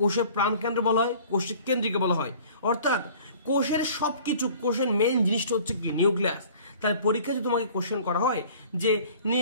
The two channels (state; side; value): inverted; both; correlation -0.49